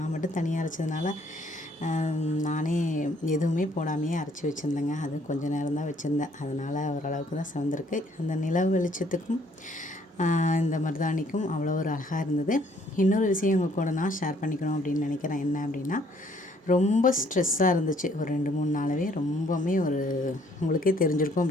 மட்டும் தனியாக அரைச்சதுனால நானே எதுவுமே போடாமையே அரைச்சி வச்சுருந்தேங்க. அது கொஞ்சம் நேரம் தான் வச்சுருந்தேன். அதனால் ஓரளவுக்கு தான் சிவந்திருக்கு. அந்த நிலவு வெளிச்சத்துக்கும் இந்த மருதாணிக்கும் அவ்வளோ ஒரு அழகாக இருந்தது. இன்னொரு விஷயம் உங்கள் கூட நான் ஷேர் பண்ணிக்கணும் அப்படின்னு நினைக்கிறேன். என்ன அப்படின்னா, ரொம்ப ஸ்ட்ரெஸ்ஸாக இருந்துச்சு ஒரு 2-3 நாளாகவே. ரொம்பவுமே உங்களுக்கே தெரிஞ்சிருக்கும்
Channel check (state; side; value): normal; both; correlation 0.64